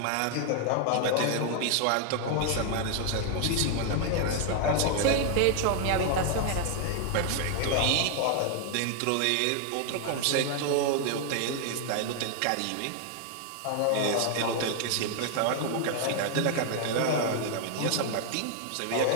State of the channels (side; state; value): both; different; correlation 0.00